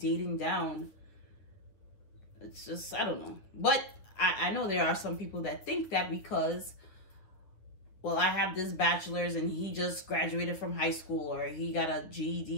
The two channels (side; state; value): right; late; 9.8 ms